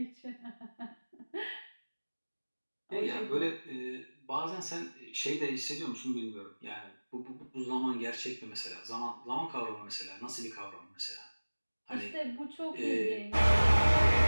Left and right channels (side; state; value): both; inverted; correlation -1.00